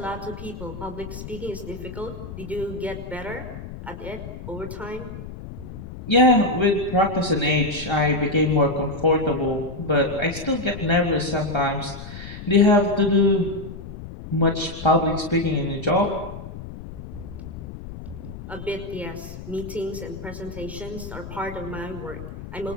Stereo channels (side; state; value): left; noise; rumble, 11 dB below the sound